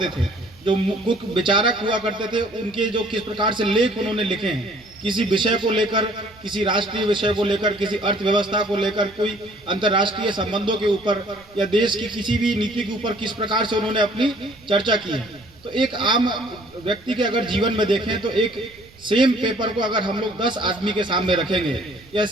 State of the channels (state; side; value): noise; right; rumble, 27 dB below the sound